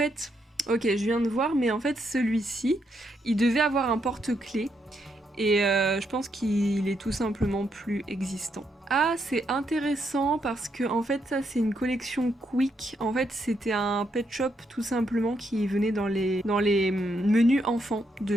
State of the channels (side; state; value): both; normal; correlation 0.78